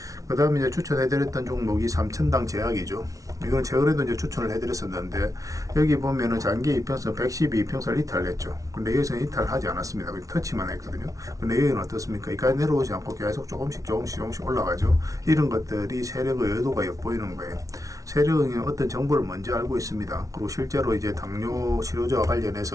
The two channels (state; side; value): late; left; 0.17 ms